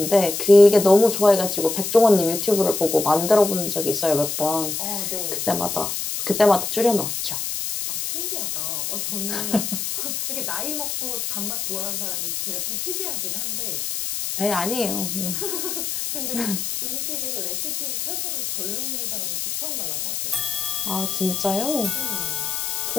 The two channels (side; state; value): left; noise; hiss, 3 dB below the sound